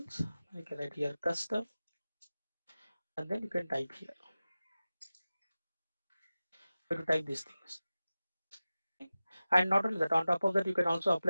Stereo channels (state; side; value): inverted; both; correlation -0.96